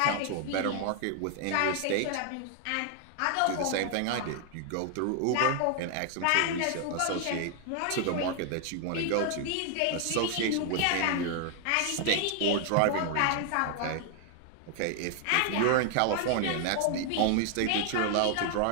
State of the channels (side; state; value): both; different; correlation 0.00